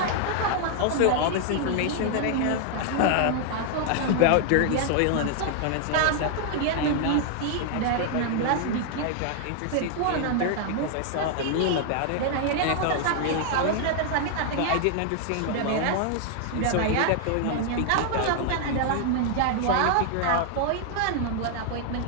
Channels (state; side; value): different; both; correlation 0.00